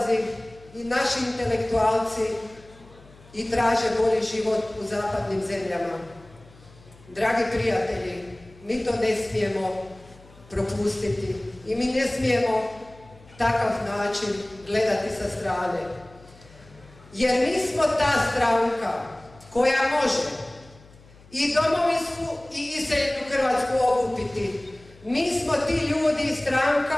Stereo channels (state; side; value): noise; left; hum, 24 dB below the sound